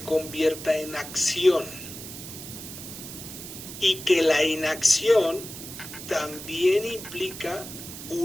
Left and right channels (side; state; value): right; noise; hiss, 11 dB below the sound